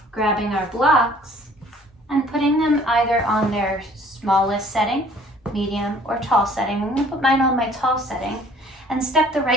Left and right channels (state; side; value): normal; both; correlation 0.55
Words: Grabbing our blocks and putting them either on their smallest setting, medium, or tall setting. I'm going to put mine on my tall setting and step the